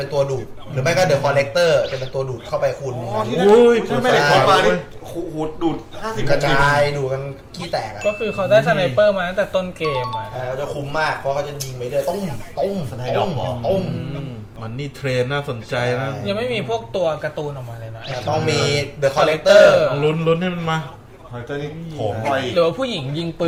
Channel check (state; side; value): identical; both; correlation 1.00